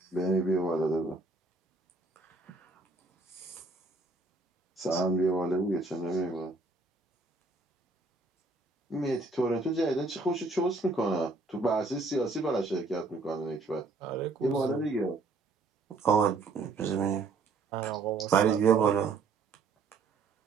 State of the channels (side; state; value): left; quieter; 3.7 dB